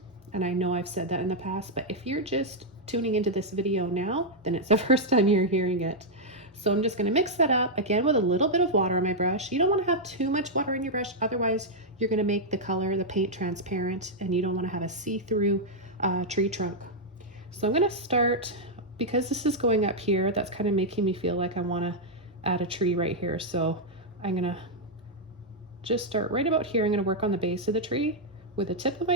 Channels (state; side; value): normal; both; correlation -0.04